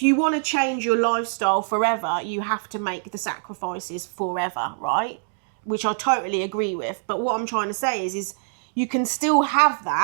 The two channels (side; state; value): left; silent; digital silence